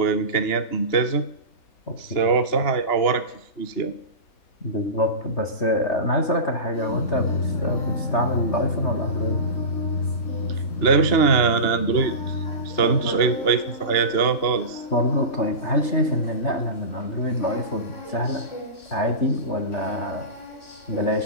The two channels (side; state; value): right; late; 3.3 ms